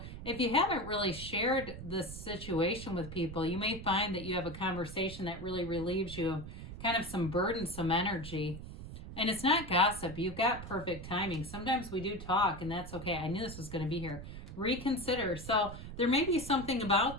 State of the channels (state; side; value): noise; right; rumble, 11 dB below the sound